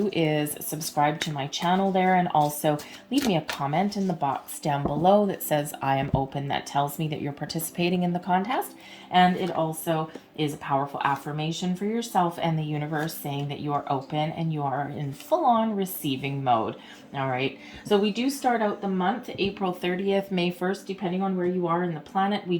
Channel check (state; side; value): identical; both; correlation 1.00